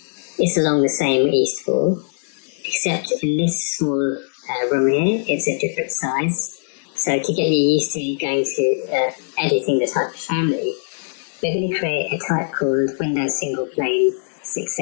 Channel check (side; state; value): right; silent; digital silence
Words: It's along the same east wall, except in this small room here, it's a different size. So to get you used to going to editing the type of family, we're going to create a type called Windows Single Plane